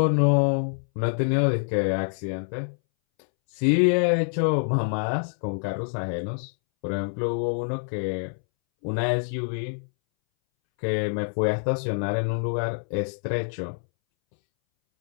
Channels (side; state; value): right; silent; 61 dB below the other